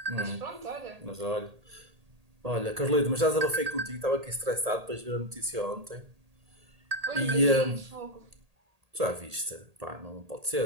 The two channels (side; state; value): left; late; 1.8 ms